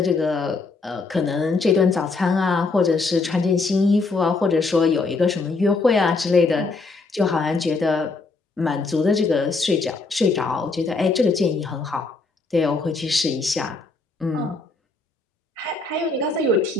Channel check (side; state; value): right; quieter; 3.8 dB